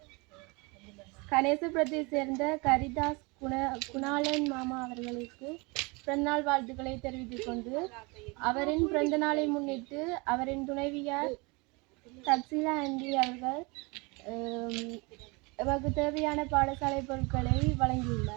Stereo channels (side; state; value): left; quieter; 27.6 dB